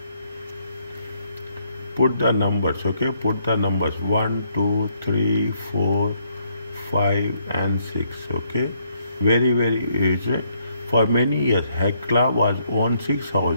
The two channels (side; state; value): both; inverted; correlation -0.72